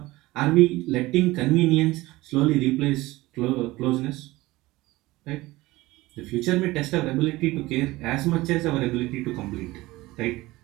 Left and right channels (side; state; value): left; quieter; 19.4 dB